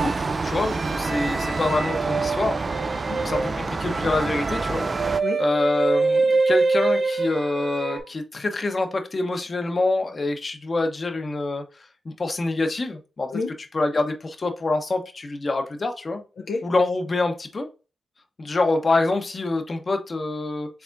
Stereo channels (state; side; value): normal; both; correlation 0.91